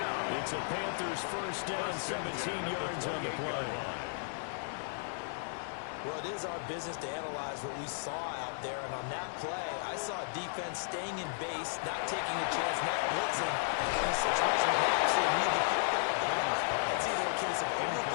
It's a Panthers first down, 17 yards on the play. Well, it is our business to analyze what we saw out there, and on that play, I saw a defense staying in base, not taking a chance, not blitzing, in a situation where they actually need the football. That's either a case of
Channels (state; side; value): silent; right; 55 dB below the other